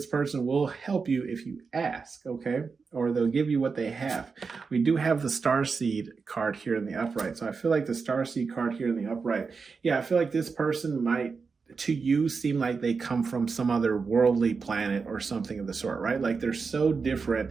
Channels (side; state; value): left; quieter; 5.0 dB